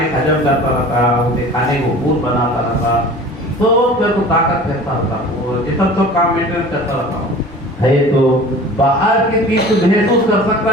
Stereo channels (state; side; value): normal; both; correlation 0.41